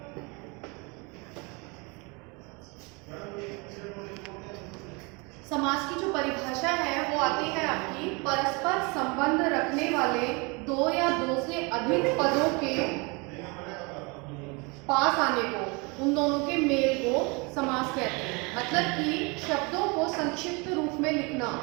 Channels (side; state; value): left; quieter; 29.1 dB